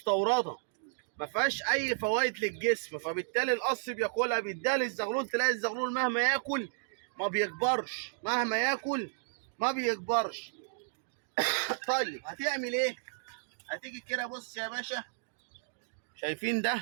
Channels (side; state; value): left; silent; digital silence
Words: ما فيهاش اي فوائد للجسم، فبالتالي القص بياكلها بيديها للزغلول. تلاقي الزغلول مهما ياكل ما بيكبرش، مهما ياكل ما بيكبرش. طيب هتعمل ايه؟ هتيجي كده بص يا باشا، شايفين